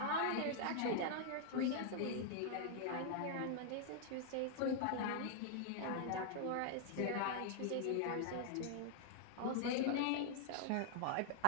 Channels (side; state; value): both; different; correlation -0.01